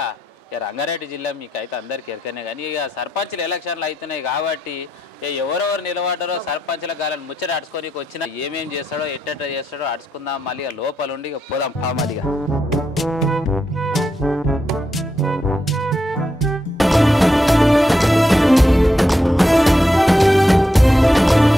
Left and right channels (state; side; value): normal; both; correlation 0.83